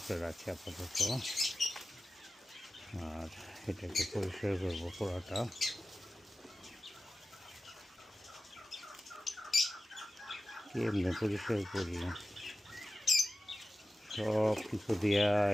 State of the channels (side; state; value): both; normal; correlation 0.94